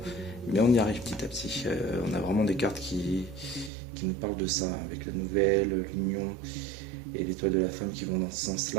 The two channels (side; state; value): left; drops out; at 3.7 s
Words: mais on y arrive petit à petit. On a vraiment des cartes qui nous parlent de ça, avec la nouvelle, l'union et l'étoile de la femme qui vont dans ce